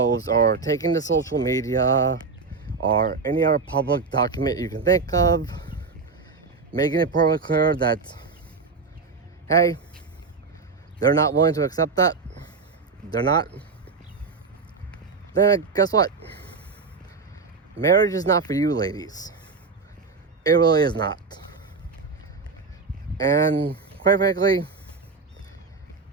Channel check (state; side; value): quieter; left; 4.6 dB